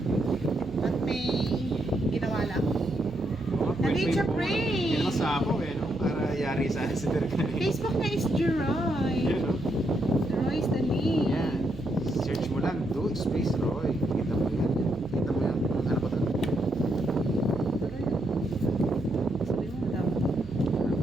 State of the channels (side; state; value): right; noise; hum, 16 dB below the sound